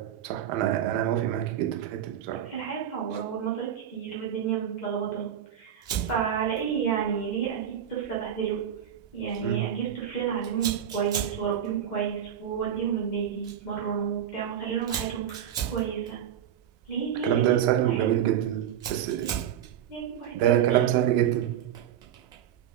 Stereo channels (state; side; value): quieter; left; 9.8 dB